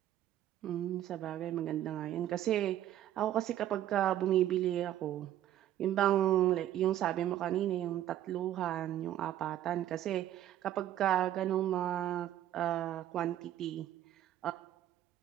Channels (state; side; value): quieter; left; 12.3 dB